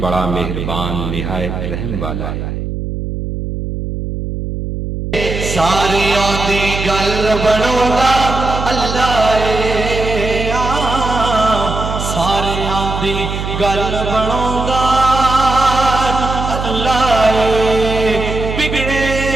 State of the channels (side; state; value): right; noise; hum, 5 dB below the sound